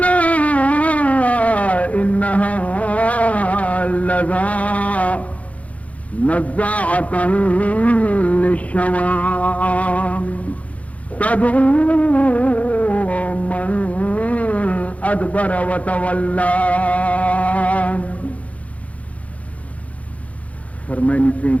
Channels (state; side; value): late; right; 0.067 ms